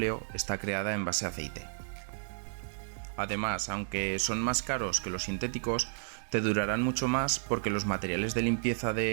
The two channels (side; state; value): left; silent; digital silence